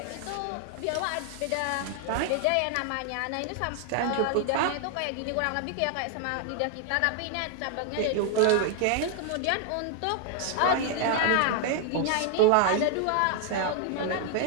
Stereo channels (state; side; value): different; both; correlation 0.00